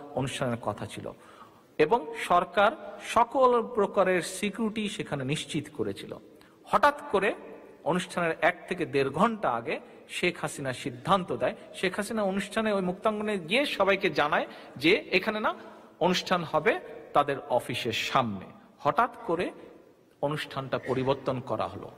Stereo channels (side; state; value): both; identical; correlation 1.00